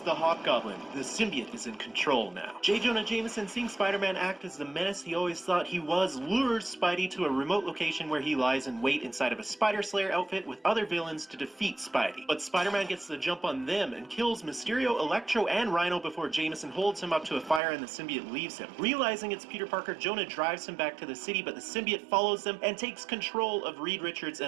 the Hobgoblin. The symbiote is in control now. J. Jonah Jameson, seeing Spider-Man act as the menace he always thought he was, lures Spidey to a remote location where he lies in wait inside of a Spider Slayer outfit with other villains to defeat Spidey. But Spider-Man gets the jump on them and kills Mysterio, Electro, and Rhino before Jameson holds him up to a fire and the symbiote leaves him. Realizing it's Peter Parker, Jonah drives him back to the city, but the symbiote follows them and takes control of Reed Richards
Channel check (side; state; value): left; drops out; at 17.6 s